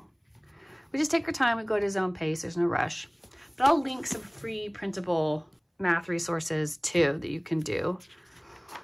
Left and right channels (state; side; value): identical; both; correlation 1.00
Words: we just take our time, we go at his own pace, there's no rush. But I'll link some free printable math resources too that you can do.